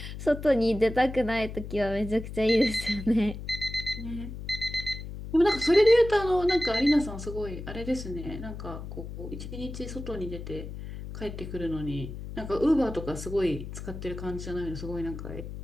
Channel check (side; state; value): left; noise; hum, 9 dB below the sound